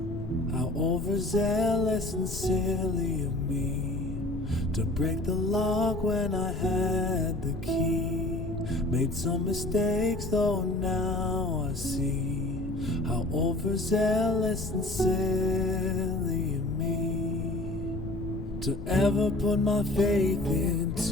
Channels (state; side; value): noise; left; rumble, 7 dB below the sound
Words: How overzealous and silly of me to break the lock when I had the key. Made some mistakes though now I see how overzealous and silly of me to ever put my faith